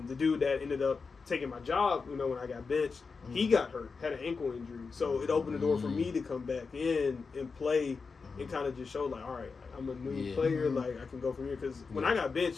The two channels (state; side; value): quieter; right; 4.8 dB